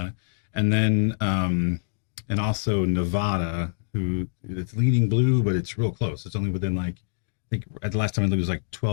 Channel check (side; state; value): right; silent; digital silence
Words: and then and also Nevada, who it's leaning blue, but it's real close. It's only within like I think at the last time I looked, it was like